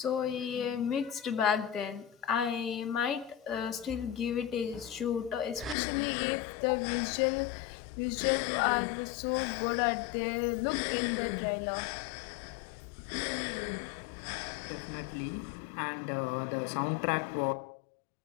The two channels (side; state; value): right; drops out; at 5.8 s